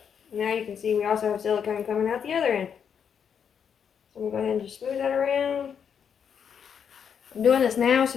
now you can see we also have silicone coming out the other end. So I'm going to go ahead and just smooth that around. I'm doing this now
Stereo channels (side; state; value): right; quieter; 7.5 dB